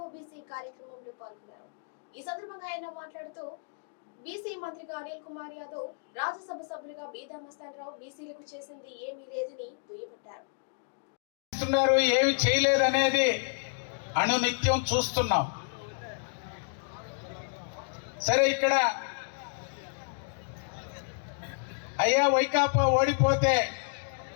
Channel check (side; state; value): right; silent; digital silence